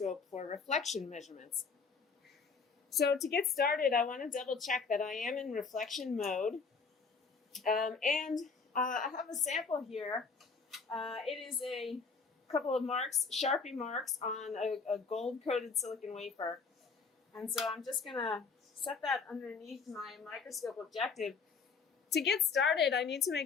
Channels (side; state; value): right; quieter; 5.0 dB